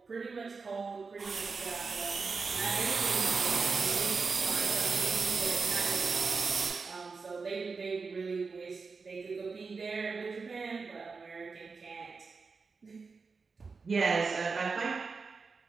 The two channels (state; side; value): quieter; left; 4.7 dB